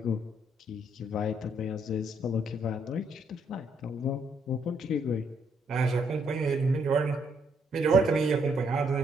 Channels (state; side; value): normal; both; correlation 0.72